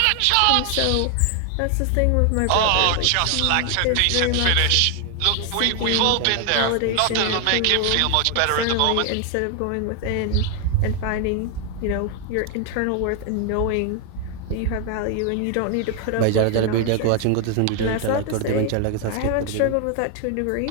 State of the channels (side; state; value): both; different; correlation 0.00